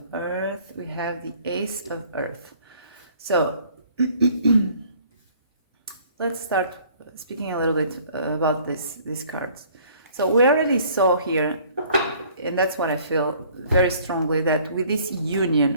Earth. We have the Ace of Earth. So let's start speaking a little bit about these cards. So we already saw here, and that's what I feel very strongly, that with this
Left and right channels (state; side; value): inverted; both; correlation -0.56